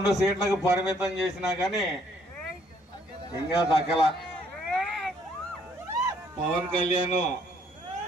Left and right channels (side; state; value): both; normal; correlation 0.65